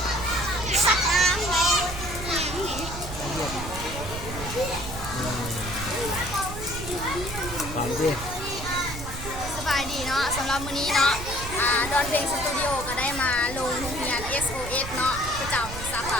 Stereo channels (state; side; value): noise; right; rumble, 9 dB below the sound